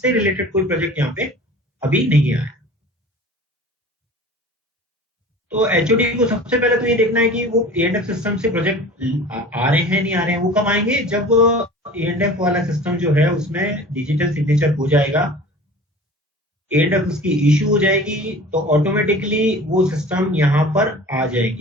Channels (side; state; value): both; normal; correlation 0.41